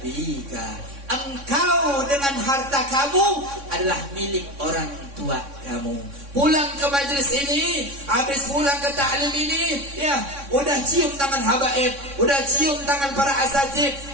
Engkau dengan harta kamu adalah milik orang tua kamu. Pulang ke majlis ini, habis pulang ke ta'lim ini, ya, udah cium tangan habaib, udah cium tangan para asatid,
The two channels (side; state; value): left; late; 3.6 ms